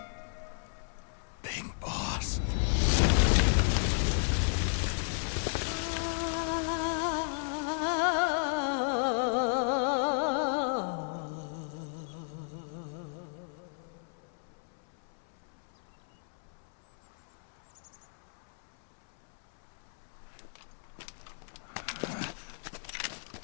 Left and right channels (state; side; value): silent; right; 55 dB below the other